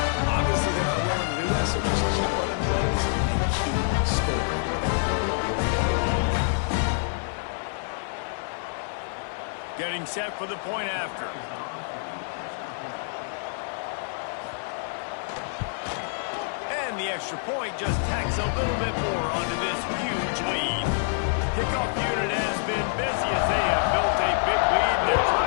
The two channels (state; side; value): silent; right; 58 dB below the other